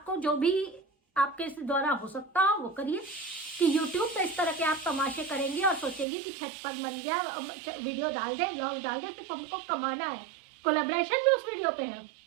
जो भी आपके द्वारा हो सकता हो वो करिए। कि YouTube पे इस तरह के आप तमाशे करेंगे और सोचेंगे कि छत पर बन गया, वीडियो डाल दे, ब्लॉग डाल दे, सिर्फ हमको कमाना है, कोलैबोरेशन भी उस वीडियो पे है।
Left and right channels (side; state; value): left; drops out; at 6.1 s